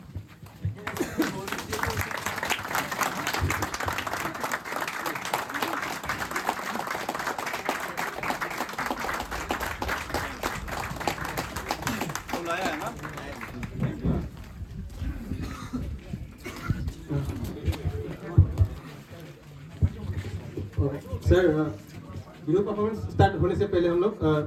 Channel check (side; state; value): both; identical; correlation 1.00